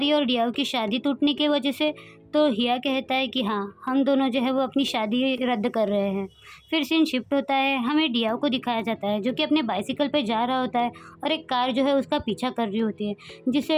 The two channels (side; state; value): both; identical; correlation 1.00